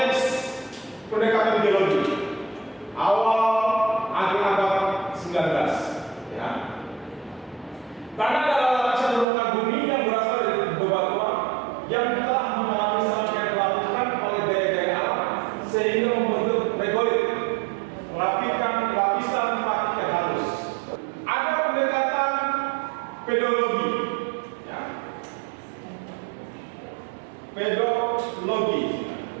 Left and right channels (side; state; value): left; drops out; at 9.2 s